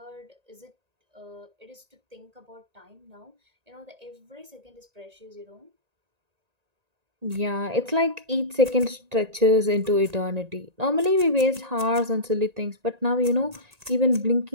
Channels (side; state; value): left; late; 1.9 ms